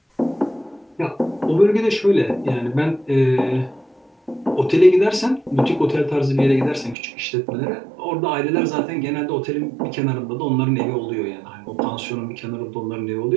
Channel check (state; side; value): drops out; left; at 7.0 s